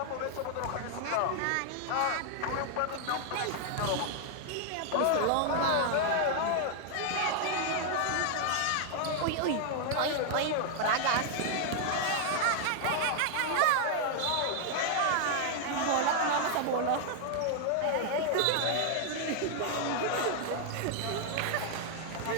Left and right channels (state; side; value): different; both; correlation 0.00